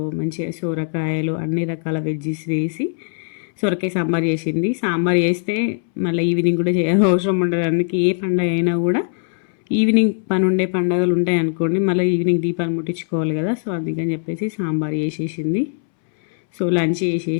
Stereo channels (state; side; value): silent; right; 66 dB below the other